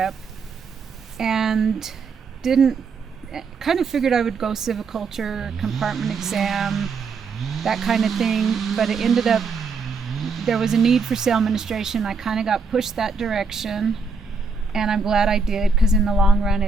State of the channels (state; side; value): quieter; left; 4.7 dB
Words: and kind of figured I would go civiculture, compartment exam, that kind of thing, but it ended up there was a need for sale administration. I kind of got pushed that direction, and I'm glad I did, because in the long run